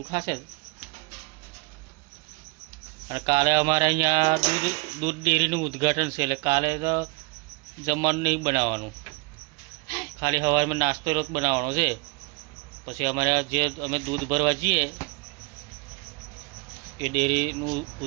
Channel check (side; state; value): left; quieter; 29.0 dB